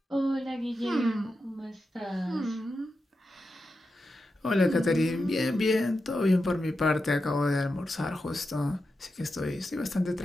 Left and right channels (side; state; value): both; normal; correlation 0.89